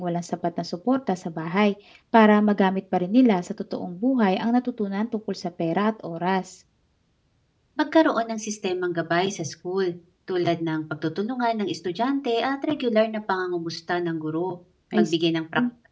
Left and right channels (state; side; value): identical; both; correlation 1.00